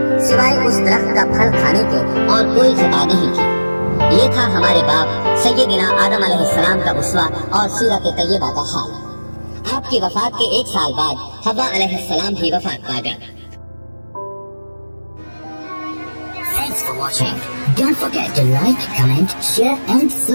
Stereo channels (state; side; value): inverted; both; correlation -1.00